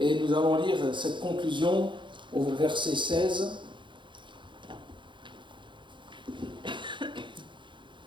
nous allons lire cette conclusion au verset 16.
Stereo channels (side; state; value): left; late; 0.23 ms